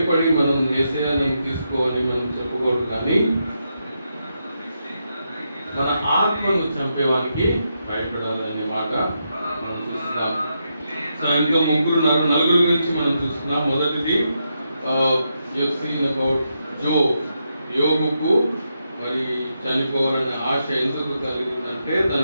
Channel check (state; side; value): inverted; both; correlation -0.83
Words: మనం యేసయ్యను తీసుకోవాలి మనం చెప్పుకోవడం, కానీ మన ఆత్మను చంపేవానికి భయపడాలి అనే మాట మనం చూస్తున్నాం. సో ఇంకా నలుగురు గురించి మనం చూస్తున్నాం. మొదటిది అబౌట్ యోగుకు మరి చనిపోవాలనే ఆశ ఎందుకు కలిగిందంటే